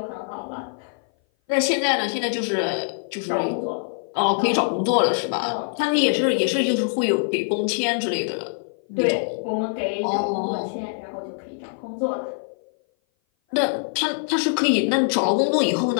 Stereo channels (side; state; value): right; silent; 58 dB below the other